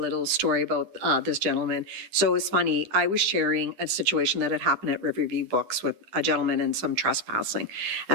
story about this gentleman. So it's funny, I was sharing a situation that had happened at Riverview Books with a gentleman and some trespassing.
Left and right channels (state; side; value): late; left; 9.9 ms